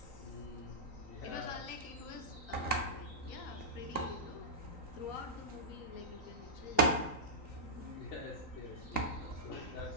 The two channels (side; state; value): right; late; 3.9 ms